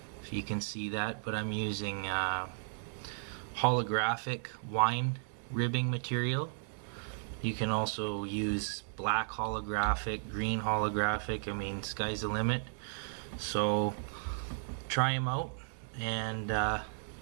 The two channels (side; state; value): left; silent; digital silence